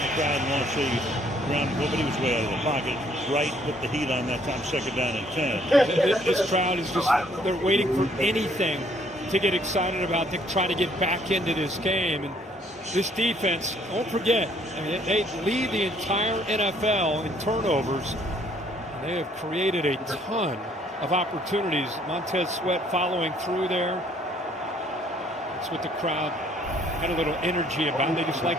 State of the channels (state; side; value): normal; both; correlation 0.63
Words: crowd wants a ground ball, but he was way out of the pocket. Right, put the heat on that time, 2nd down and 10. This crowd is just, they're waiting for anything to get excited about, to try to get back into this game. And this defense, don't forget, I mean, they lead the entire NFL in turnovers. They have created a ton of opportunities. Montez Sweat following through there. That's what the crowd had a little energy about. They just like